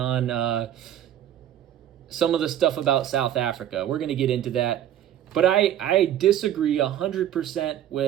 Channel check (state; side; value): quieter; left; 11.2 dB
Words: some of the stuff about South Africa. We're going to get into that. But I disagree 100%